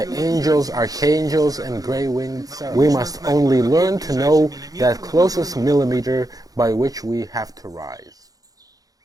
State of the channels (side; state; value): left; late; 0.18 ms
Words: angels, archangels, and gray-winged seraph. We must only learn to know that closest millimeter by which we have to rise.